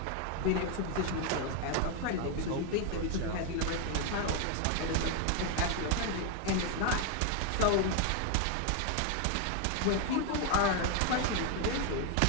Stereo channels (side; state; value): both; different; correlation 0.01